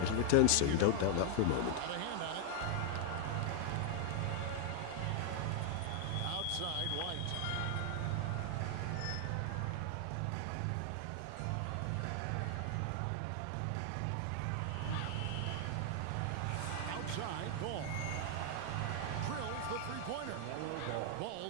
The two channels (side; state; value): both; different; correlation 0.00